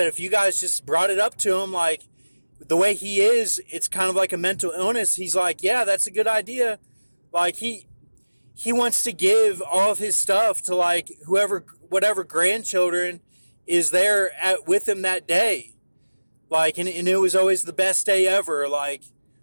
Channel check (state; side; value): inverted; both; correlation -1.00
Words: if you guys just brought it up to him, like the way he is, it's kind of like a mental illness. He's like, yeah, that's a good idea. Like he wants to give all of his stuff to like whatever grandchildren is there with him that day. Like, and it was always the best day ever. Like,